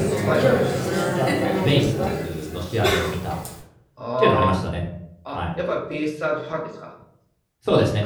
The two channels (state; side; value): identical; both; correlation 1.00